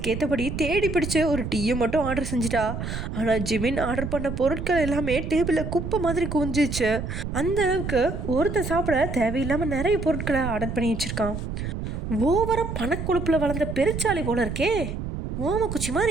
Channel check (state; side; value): noise; right; rumble, 5 dB below the sound